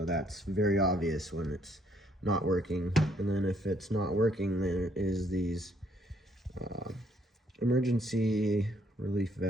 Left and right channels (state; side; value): normal; both; correlation 0.68